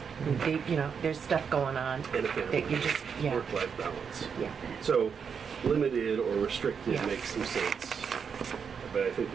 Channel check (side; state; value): left; quieter; 6.6 dB